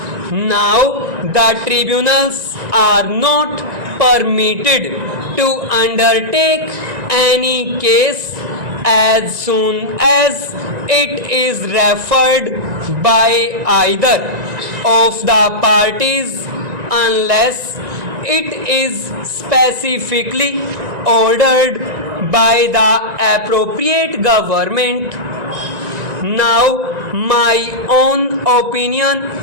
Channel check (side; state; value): left; late; 1.9 ms